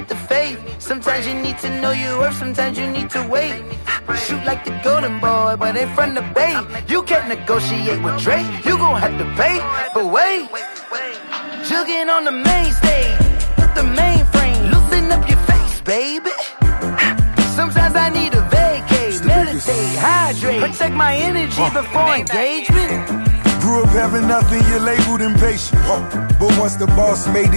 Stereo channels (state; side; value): inverted; both; correlation -1.00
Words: the faith, sometimes you need to know your worth, sometimes you need to wait. Shoot like the golden boy, but in front of Bay. You can't negotiate with Drake, you gon' have to pay. But wait, jugging on the main stage, with the mainframe, loosen up your face, baby. Sometimes I need a vacate, meditate, hydrate, protect my energy before engagement. Grew up having nothing, you're labeled impatient. But once the boss made